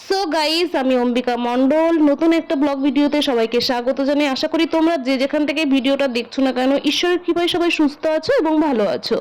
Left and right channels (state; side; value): identical; both; correlation 1.00